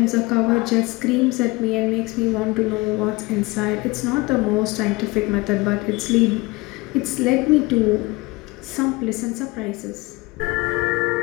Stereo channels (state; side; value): quieter; right; 23.3 dB